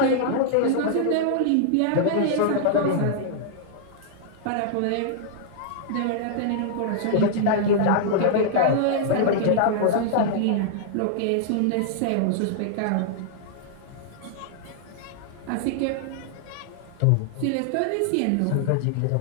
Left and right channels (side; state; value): both; different; correlation -0.01